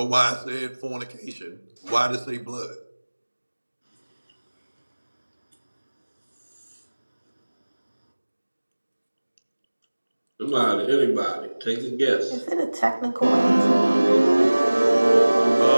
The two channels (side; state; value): both; inverted; correlation -1.00